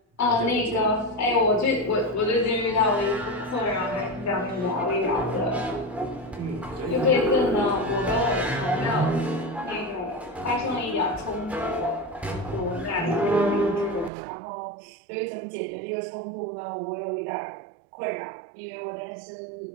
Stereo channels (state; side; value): drops out; left; at 14.1 s